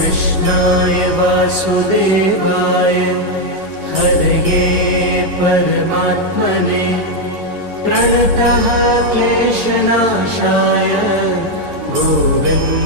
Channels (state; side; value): late; left; 11 ms